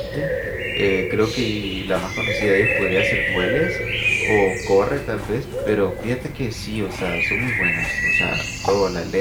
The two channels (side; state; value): both; identical; correlation 1.00